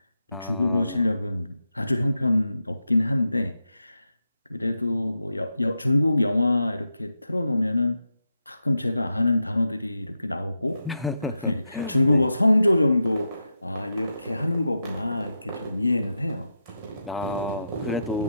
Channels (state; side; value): inverted; both; correlation -0.86